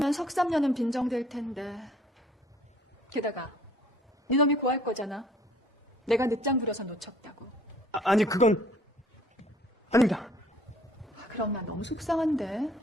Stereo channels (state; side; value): normal; both; correlation 0.57